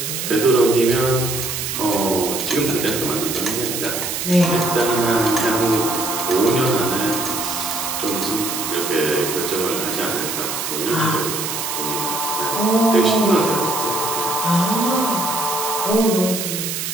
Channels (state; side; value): noise; right; hiss, 3 dB below the sound